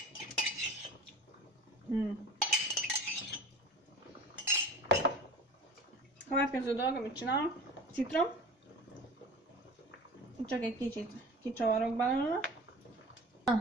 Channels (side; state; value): both; normal; correlation 0.38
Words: Következő dolog, amit csinálok, citrom. Csak egy kicsit kicsavarok belőle. A